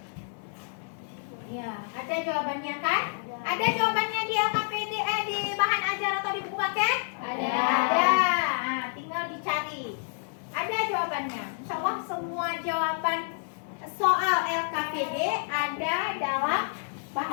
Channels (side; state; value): right; silent; 59 dB below the other